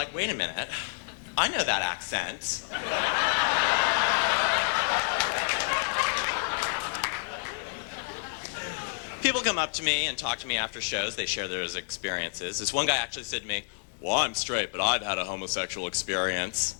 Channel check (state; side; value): silent; right; digital silence